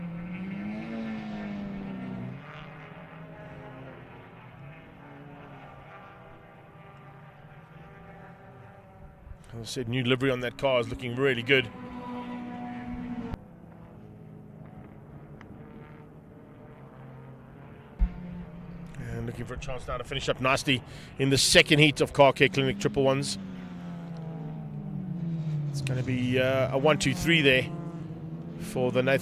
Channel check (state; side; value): identical; both; correlation 1.00